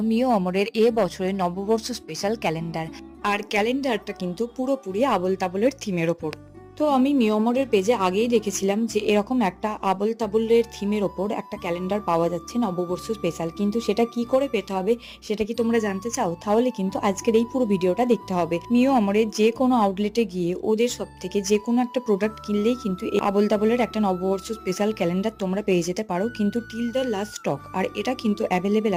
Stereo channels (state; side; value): identical; both; correlation 1.00